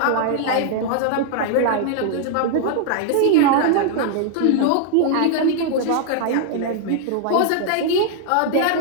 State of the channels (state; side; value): different; both; correlation 0.00